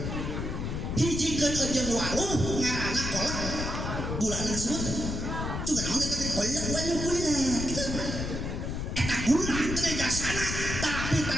hiji keun ejeung waluh ngaranna kolak gulana kasebut juga naon eta teh kolak waluh gula gitu eta gula teh jasana tapi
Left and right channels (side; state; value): left; noise; rumble, 3 dB below the sound